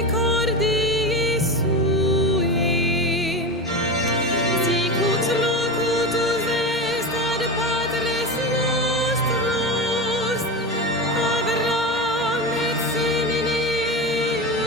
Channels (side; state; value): both; normal; correlation 0.23